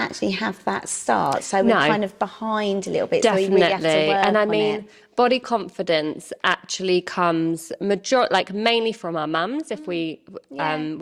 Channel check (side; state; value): both; identical; correlation 1.00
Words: have that start, so we're kind of behind a little bit. Definitely. So we really have to work and I on mean, it. body confidence actually comes mainly from our mums. If we